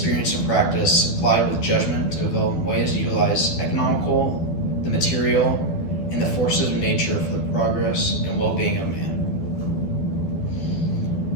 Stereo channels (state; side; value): late; right; 12 ms